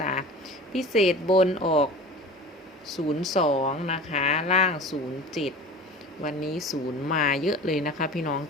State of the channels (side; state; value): both; normal; correlation 0.37